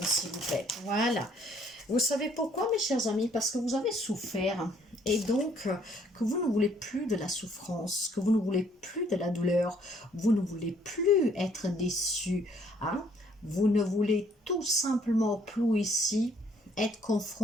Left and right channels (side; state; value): both; normal; correlation 0.64